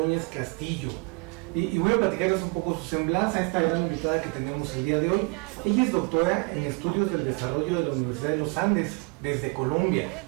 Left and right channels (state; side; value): quieter; left; 30.6 dB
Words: Castillo. Y voy a platicarles un poco su semblanza a esta gran invitada que tenemos el día de hoy. Ella es doctora en Estudios del Desarrollo de la Universidad de los Andes, desde Colombia,